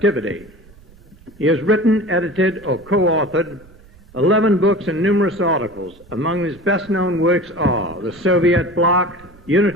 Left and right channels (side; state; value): right; noise; rumble, 25 dB below the sound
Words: He has written, edited, or co-authored 11 books and numerous articles. Among his best-known works are The Soviet Bloc,